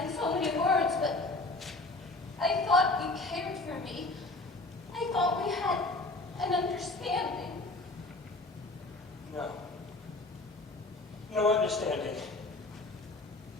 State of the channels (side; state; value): right; quieter; 3.1 dB